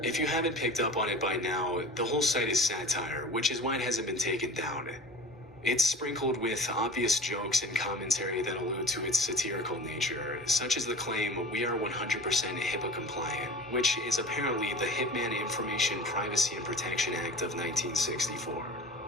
If you haven't picked up on it by now, the whole site is satire, which is why it hasn't been taken down. It's sprinkled with obvious jokes and commentary that allude to its satirical nature, such as the claim, "We are 100% HIPAA compliant," which is apparently the Hitman Information Privacy and Protection Act of 1964.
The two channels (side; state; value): both; normal; correlation 0.37